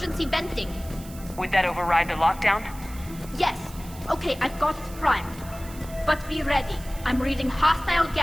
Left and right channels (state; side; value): noise; right; hiss, 18 dB below the sound